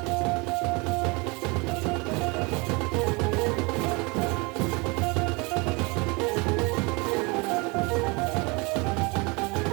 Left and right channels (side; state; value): left; quieter; 28.0 dB